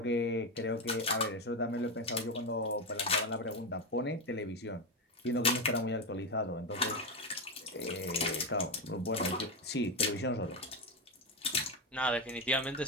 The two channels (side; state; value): both; normal; correlation 0.12